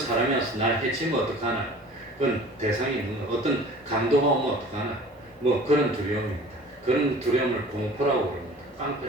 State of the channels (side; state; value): both; normal; correlation 0.45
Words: 와서 나를 해치면 어떡하나. 그건 대상이 있는 거. 어떤 강도가 오면 어떡하나. 그런 두려움입니다. 그런 두려움을 공포라고 그럽니다.